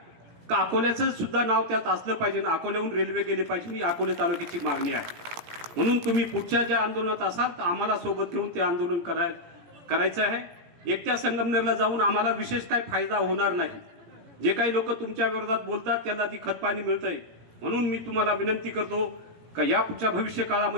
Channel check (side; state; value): left; late; 17 ms